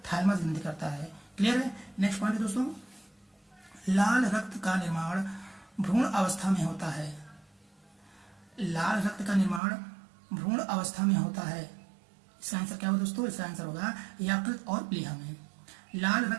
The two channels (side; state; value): left; drops out; at 9.6 s